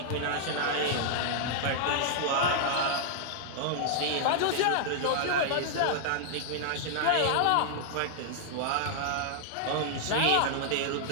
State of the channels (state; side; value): different; both; correlation -0.01